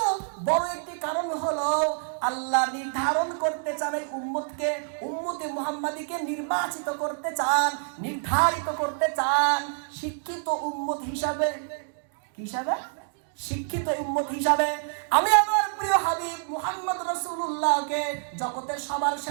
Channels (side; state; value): left; silent; digital silence